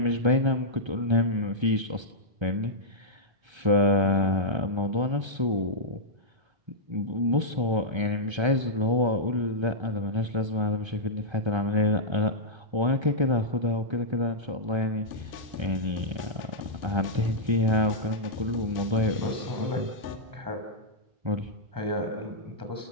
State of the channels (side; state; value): left; late; 1.3 ms